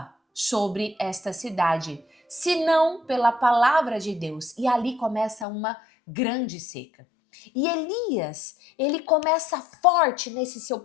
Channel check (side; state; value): right; drops out; at 5.5 s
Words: sobre esta cidade, senão pela palavra de Deus. E ali começa uma grande seca. E Elias, ele começa forte nesse seu